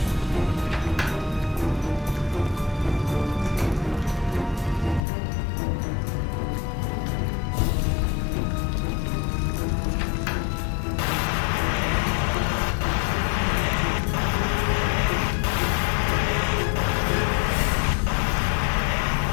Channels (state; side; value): drops out; right; at 5.1 s